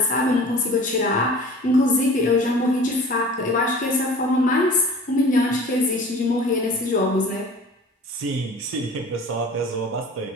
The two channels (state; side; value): normal; both; correlation 0.43